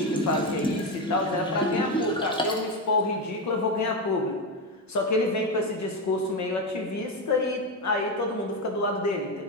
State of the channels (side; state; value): both; normal; correlation 0.12